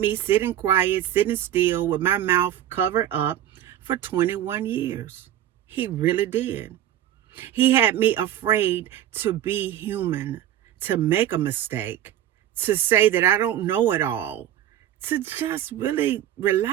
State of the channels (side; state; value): left; quieter; 11.7 dB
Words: sitting quiet, sitting still with my mouth covered up for 21 years. He really did. He had me afraid to be human, to make a mistake, to say that I don't know it all, to just really